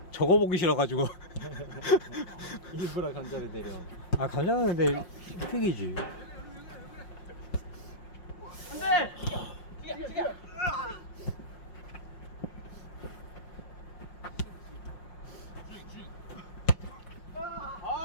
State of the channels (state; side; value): late; right; 5.6 ms